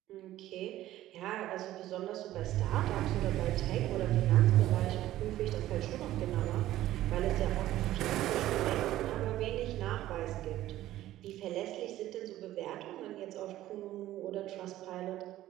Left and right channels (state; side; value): quieter; left; 14.3 dB